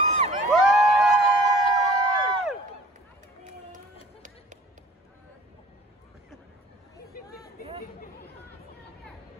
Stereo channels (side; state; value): both; normal; correlation 0.48